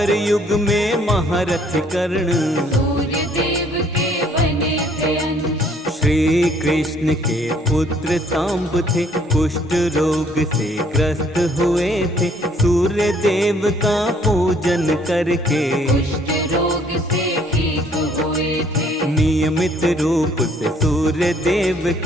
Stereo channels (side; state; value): both; normal; correlation 0.62